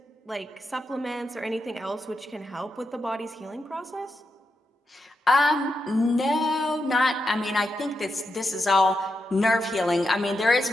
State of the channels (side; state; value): both; normal; correlation 0.86